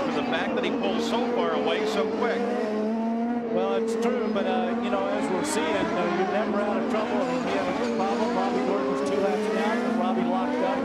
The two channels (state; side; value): identical; both; correlation 1.00